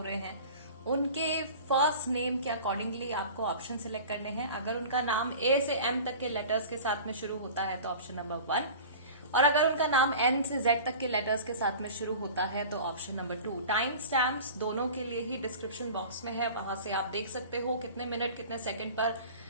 रहे हैं, उनके फर्स्ट नेम के अकॉर्डिंगली आपको ऑप्शन सिलेक्ट करने हैं। अगर उनका नाम ए से एम तक के लेटर्स के साथ में शुरू होता है तो ऑप्शन नंबर 1, और अगर उनका नाम एन से जेड तक के लेटर्स के साथ में शुरू होता है तो ऑप्शन नंबर 2। टाइम स्टैम्प्स दोनों के लिए ही डिस्क्रिप्शन बॉक्स में है, वहां से आप देख सकते हो कितने मिनट कितने सेकंड पर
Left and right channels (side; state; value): both; inverted; correlation -0.39